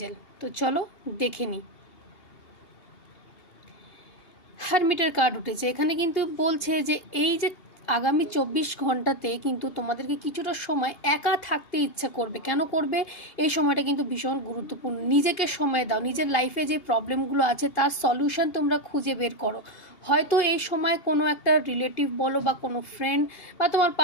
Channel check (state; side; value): late; right; 2.8 ms